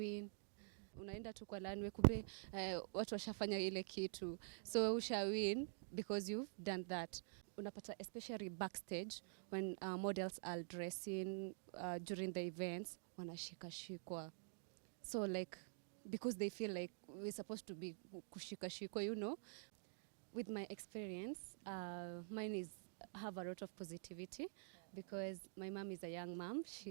Unaenda tu kwa lanwe kumbe watu washafanya ile kitu, so usha win because you've done that. Unapata especially backstage when models are dressing during the events, wanashikashikwa, so like because they feel like we're supposed to be kushikashikwa. With my experience, mine is have a lot of positivity because my mom is a young mom.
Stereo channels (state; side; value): silent; left; digital silence